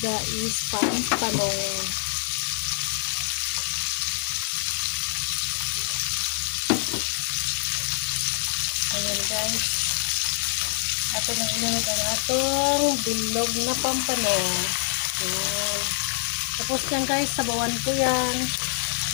is panpanong. Ayan guys, ato nang inunod ang atong bilog na pampanong. Ayan. Tapos yan guys, sabawan ko yan.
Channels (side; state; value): right; silent; 58 dB below the other